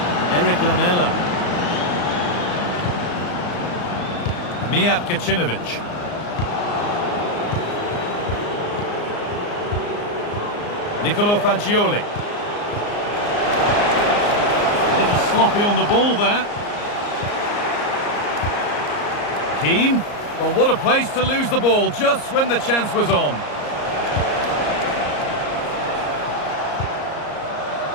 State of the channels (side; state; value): right; late; 34 ms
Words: Eric Lamela. Mijat Gacinovic. Nicolo Fagioli. A little sloppy on the ball there. Keane. Well, what a place to lose the ball just when the chance was on.